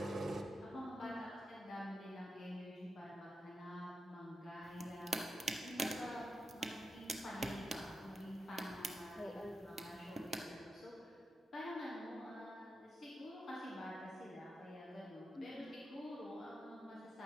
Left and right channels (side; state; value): both; normal; correlation 0.88